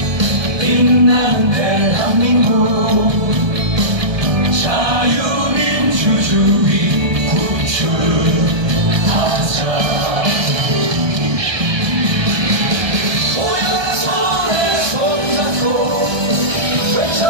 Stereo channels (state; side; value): late; left; 1.2 ms